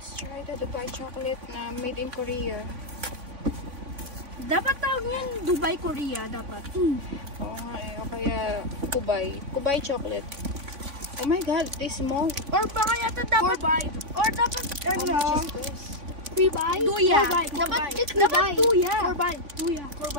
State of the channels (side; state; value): left; late; 3.5 ms